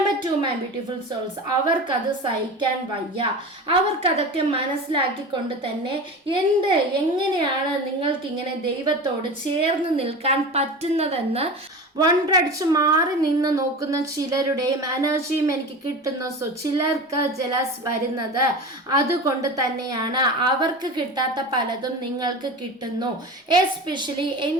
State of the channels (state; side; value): normal; both; correlation 0.30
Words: 2 my beautiful souls, അവർക്കത് സഹിക്കാൻ വയ്യ. അവർക്കതൊക്കെ മനസ്സിലാക്കിക്കൊണ്ട് തന്നെ എങ്ങനെയാണ് നിങ്ങൾക്കിങ്ങനെ ദൈവത്തോട് ചേർന്ന് നിൽക്കാൻ പറ്റുന്നതെന്ന് വണ്ടടിച്ച് മാറി നിന്ന് നോക്കുന്ന ചിലരുടെയും എനർജിയും എനിക്ക് കിട്ടുന്നു. സോ ചിലർക്ക് ജലസ് വരുന്നത് അതുകൊണ്ട് തന്നെയാണ്. അവർക്ക് കിട്ടാത്ത പലതും നിങ്ങൾക്ക് കിട്ടുന്നു. എസ്പെഷ്യലി